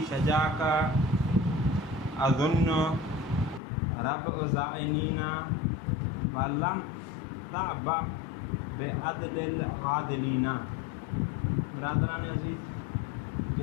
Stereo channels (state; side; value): drops out; right; at 3.6 s